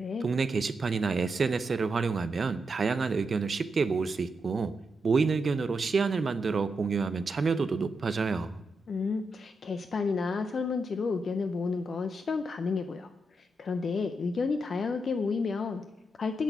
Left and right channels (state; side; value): normal; both; correlation 0.84